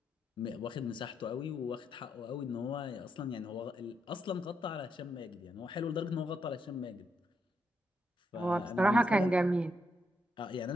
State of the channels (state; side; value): normal; both; correlation 0.80